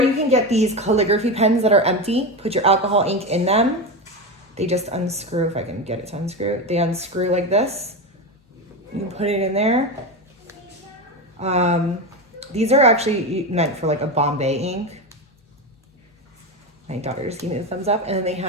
you can get these calligraphy pens that are empty. Put your alcohol ink in them. They just unscrew, if I can get it to unscrew. They unscrew like this. You can put it in there. These are actually meant for like a Bombay ink. My daughter just gave me the thumbs up. And then they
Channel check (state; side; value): normal; both; correlation 0.18